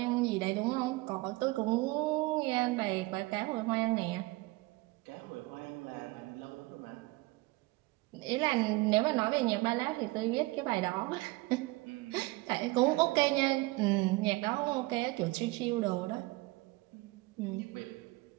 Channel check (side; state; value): left; quieter; 22.1 dB